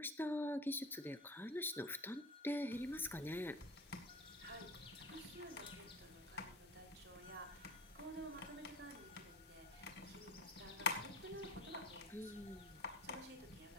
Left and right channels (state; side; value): normal; both; correlation 0.35